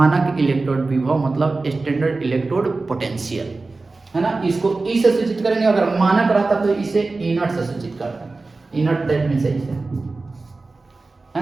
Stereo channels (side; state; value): left; quieter; 3.6 dB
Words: इलेक्ट्रोड विभव, मतलब स्टैंडर्ड इलेक्ट्रोड पोटेंशियल, है ना। इसको ई से सूचित करेंगे। अगर मानक रहता तो इसे इनर्ट से सूचित करते हैं। इनर्ट दैट मींस इसे, है